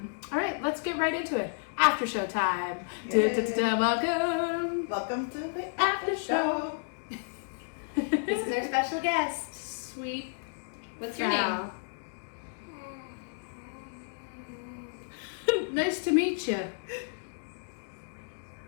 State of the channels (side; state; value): right; silent; digital silence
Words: right, let's get right into it. After show time. Welcome to the after show. This is our special guest. Sweet. What's your name? Nice to meet you.